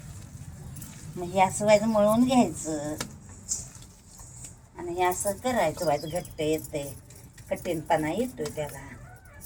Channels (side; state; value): both; identical; correlation 1.00